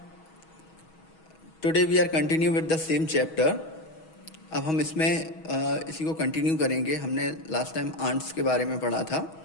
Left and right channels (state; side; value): late; right; 6.3 ms